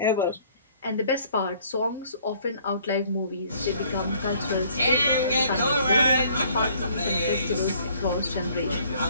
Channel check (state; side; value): inverted; both; correlation -0.59